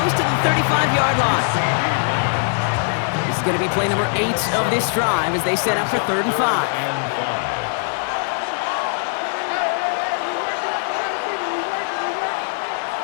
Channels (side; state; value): right; silent; digital silence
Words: to the 35-yard line. This is going to be play number 8 of this drive as they set up for 3rd and 5.